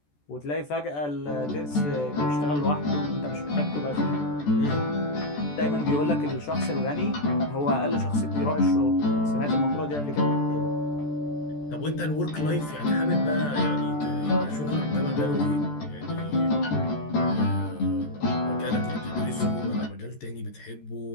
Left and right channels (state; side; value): late; right; 14 ms